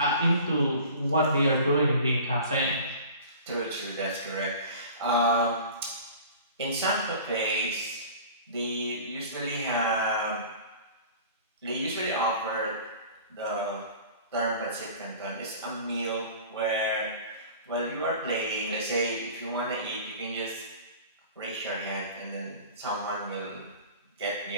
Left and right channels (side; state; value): both; inverted; correlation -0.42